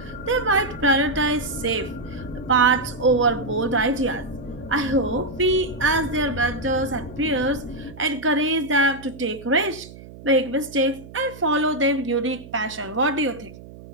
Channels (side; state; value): right; noise; hum, 17 dB below the sound